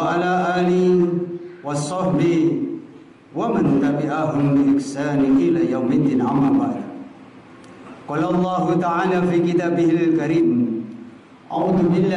ala alihi wa sahbihi wa man tabi'ahum bi ihsan ila yaumiddin, amma ba'd. Qala Allah ta'ala fi kitabihil karim, a'udzu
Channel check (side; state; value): both; identical; correlation 1.00